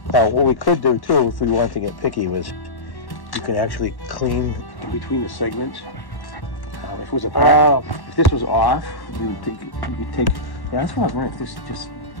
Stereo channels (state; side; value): late; right; 1.1 ms